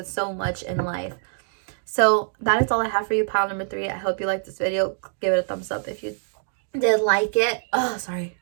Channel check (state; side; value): silent; left; digital silence